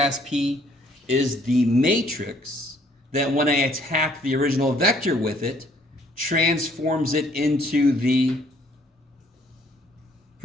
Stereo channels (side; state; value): both; normal; correlation 0.62